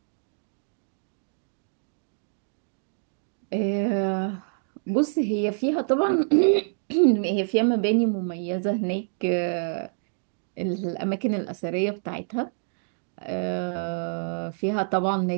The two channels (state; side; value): silent; left; digital silence